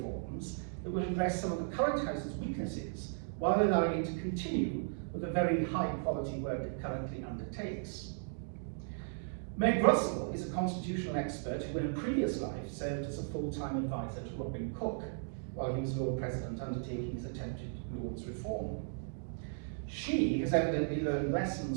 that will address some of the current House's weaknesses while allowing it to continue with the very high quality work it currently undertakes. Meg Russell is a constitutional expert who in a previous life served as a full-time advisor to Robin Cook while he was Lord President undertaking his attempted Lord's reform. She has evidently learned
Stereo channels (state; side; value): silent; left; digital silence